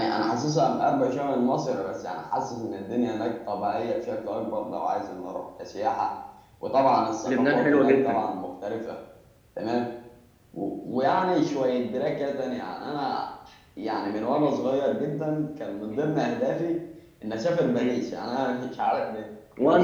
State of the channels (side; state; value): both; identical; correlation 1.00